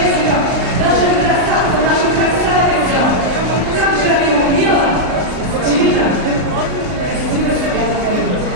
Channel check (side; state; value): left; late; 39 ms